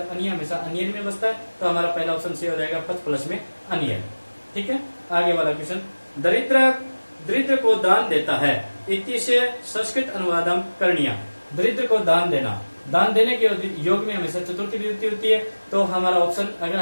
अनिय हमेशा अनियन में बसता है, तो हमारा पहला ऑप्शन सी हो जाएगा पच प्लस में अनियन, ठीक है। आगे वाला क्वेश्चन, दरिद्र को दान देता है इति से संस्कृत अनुवादम करणीय, दरिद्र को दान देना, दान देने के योग में हमेशा चतुर्थी विभक्ति होती है, तो हमारा ऑप्शन अगर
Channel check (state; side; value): inverted; both; correlation -1.00